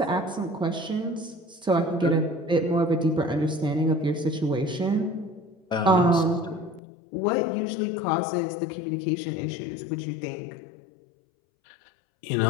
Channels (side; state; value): right; drops out; at 6.8 s